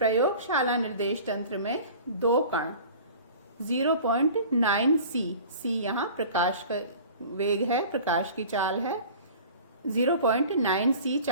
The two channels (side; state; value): both; inverted; correlation -0.43